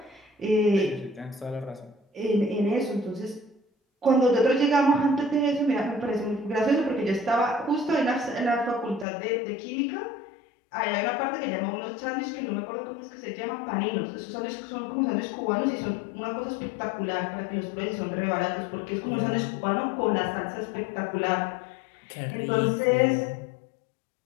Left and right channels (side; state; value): right; drops out; at 9.1 s